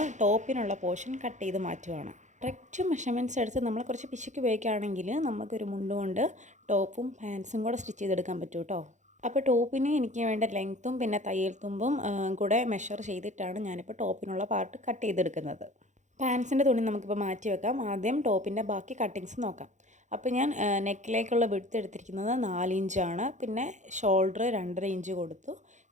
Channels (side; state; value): left; late; 0.35 ms